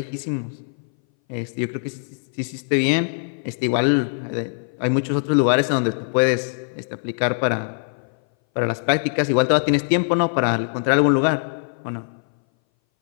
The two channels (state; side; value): silent; right; 60 dB below the other